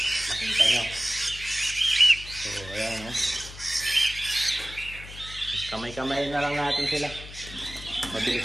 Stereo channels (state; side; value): noise; left; hum, 14 dB below the sound